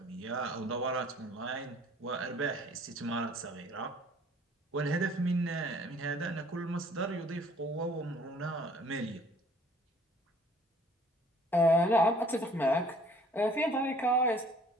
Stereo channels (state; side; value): normal; both; correlation 0.56